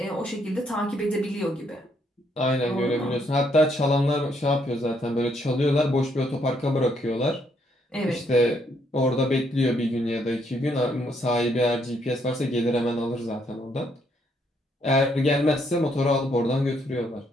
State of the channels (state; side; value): normal; both; correlation 0.72